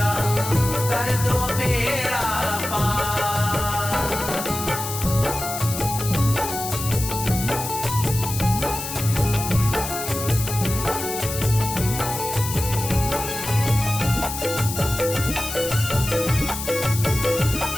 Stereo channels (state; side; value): noise; left; hiss, 6 dB below the sound